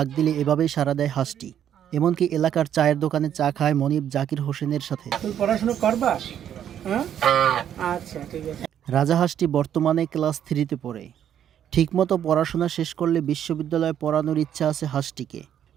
দিলে এভাবেই সাড়া দেয় হাঁসটি। এমনকি এলাকার চায়ের দোকানে চা খায় মনিব জাকির হোসেনের সাথে। পড়াশোনা করবা? আচ্ছা ঠিক আছে। রাজা হাঁসটি বর্তমানে ক্লাস 3-তে পড়ে। ঠিকমতো পড়াশোনা শেষ করলে বিশ্ববিদ্যালয়ে পড়ানোর ইচ্ছা আছে হাঁসটিকে।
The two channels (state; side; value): quieter; left; 9.9 dB